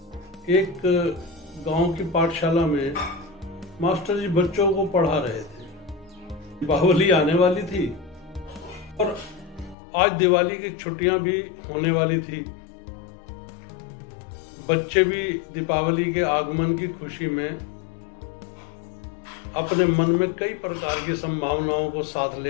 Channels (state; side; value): drops out; right; at 9.8 s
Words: एक गांव की पाठशाला में मास्टर जी बच्चों को पढ़ा रहे थे। दीपावली आने वाली थी और आज दिवाली की छुट्टियां भी होने वाली थी। बच्चे भी दीपावली के आगमन की खुशी में अपने मन में कई प्रकार की संभावनाओं को साथ